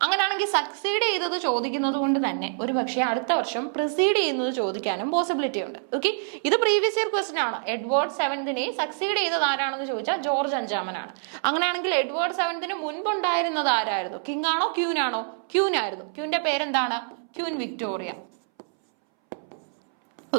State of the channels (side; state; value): left; silent; 61 dB below the other